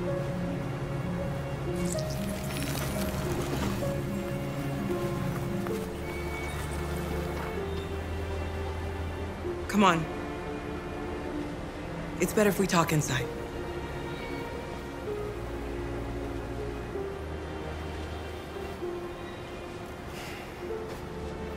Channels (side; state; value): both; identical; correlation 1.00